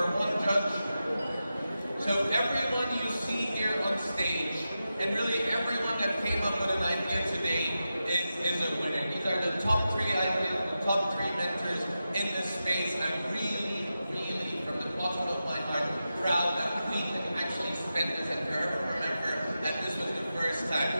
one judge. So everyone you see here on stage, and really everyone that came up with an idea today is a winner. These are the top 3 ideas, the top 3 mentors in this space. I'm really, from the bottom of my heart, proud that we can actually spend this and forever remember that this was the first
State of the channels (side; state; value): both; inverted; correlation -0.91